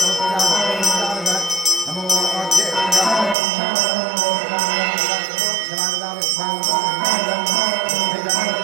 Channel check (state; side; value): drops out; left; at 3.4 s